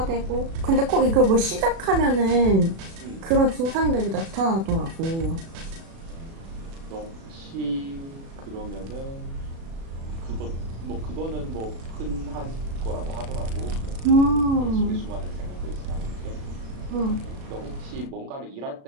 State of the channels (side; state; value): left; late; 36 ms